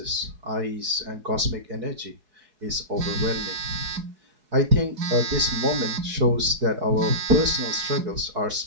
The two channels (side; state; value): left; late; 4.6 ms